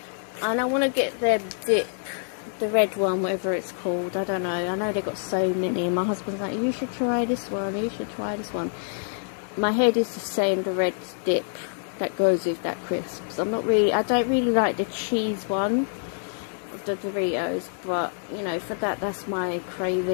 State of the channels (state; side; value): silent; right; digital silence